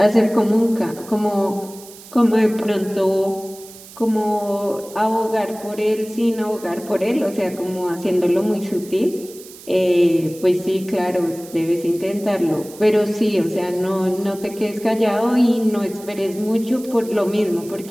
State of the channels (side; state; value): right; noise; hiss, 19 dB below the sound